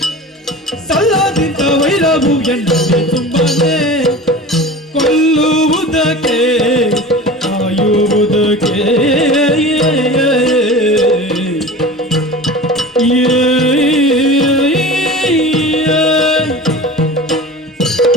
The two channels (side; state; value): both; normal; correlation 0.35